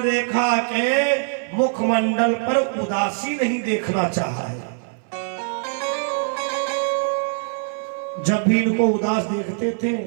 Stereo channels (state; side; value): silent; left; 60 dB below the other